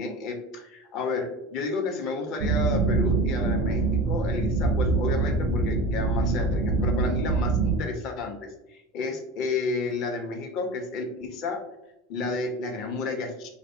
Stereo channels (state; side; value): normal; both; correlation 0.32